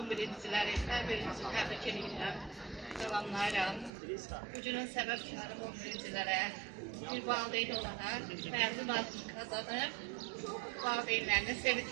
11-ciləri hər birinizi təbrik edirəm, salamlayıram. Bugünün səbəbkarı 11-cilərə bir valideyn olaraq məzun adını kazanıb, valideynlərini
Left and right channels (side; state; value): left; drops out; at 3.9 s